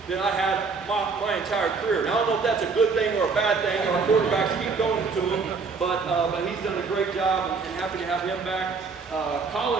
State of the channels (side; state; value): left; quieter; 4.8 dB